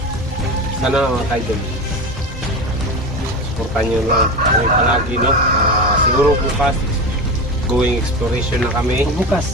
Sana mga kaidol, supportan nyo lang kami palagi. No? Siguro bukas, going exploration na kami.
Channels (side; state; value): both; normal; correlation 0.24